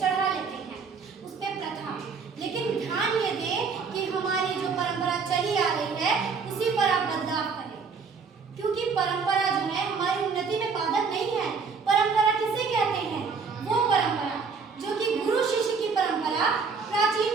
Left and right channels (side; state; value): left; quieter; 5.3 dB